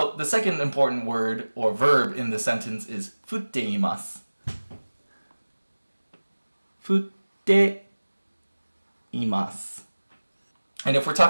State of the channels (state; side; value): inverted; both; correlation -1.00